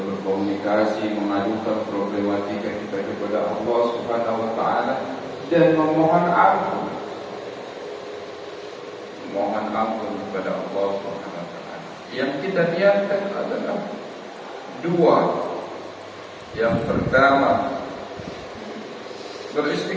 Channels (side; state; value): both; identical; correlation 1.00